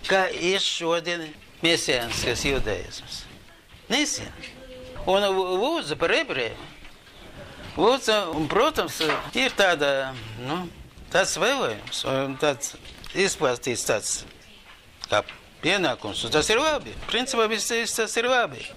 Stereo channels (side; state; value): both; identical; correlation 1.00